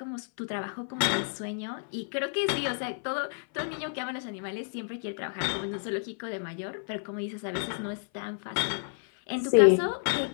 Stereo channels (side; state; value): right; silent; 57 dB below the other